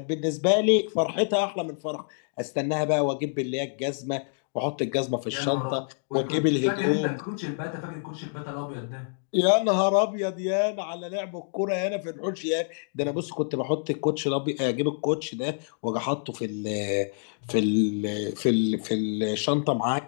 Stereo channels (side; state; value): right; silent; digital silence